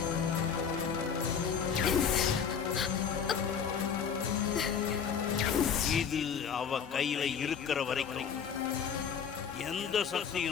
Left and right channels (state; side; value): quieter; right; 7.1 dB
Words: இது அவ கையில இருக்கிற வரைக்கும் எந்த